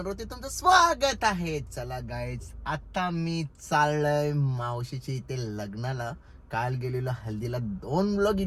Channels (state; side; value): identical; both; correlation 1.00